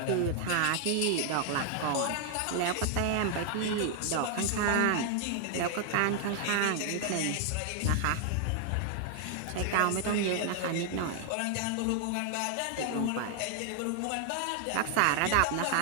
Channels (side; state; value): both; different; correlation 0.00